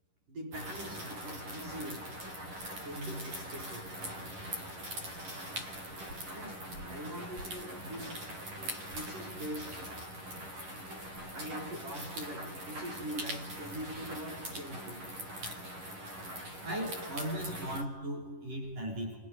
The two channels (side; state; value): left; late; 11 ms